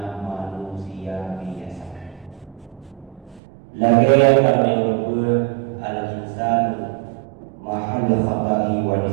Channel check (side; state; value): left; drops out; at 3.4 s